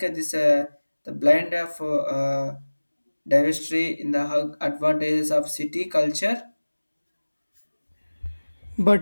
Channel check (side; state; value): both; inverted; correlation -1.00